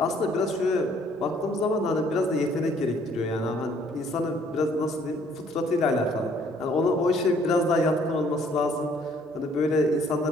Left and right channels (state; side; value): normal; both; correlation 0.61